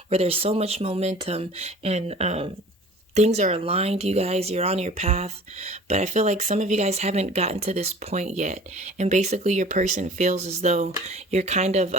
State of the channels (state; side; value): normal; both; correlation 0.46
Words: where there's so much momentum and things are aligned, you guys. You're on your path. But I feel like some of you guys haven't gotten to this point yet. And basically your person feels as though you're kind of